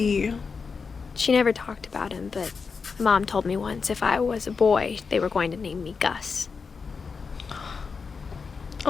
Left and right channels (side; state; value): right; quieter; 5.2 dB